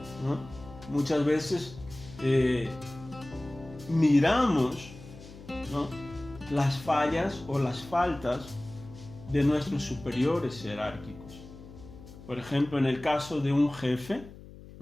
¿no? Muchas veces miramos, ¿no?, las fallas o las faltas de nuestros superiores jerárquicos. Por ejemplo, en el caso de un jefe,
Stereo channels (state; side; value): noise; left; hum, 17 dB below the sound